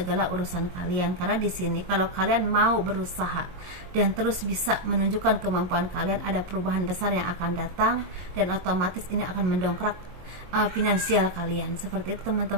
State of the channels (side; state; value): left; late; 22 ms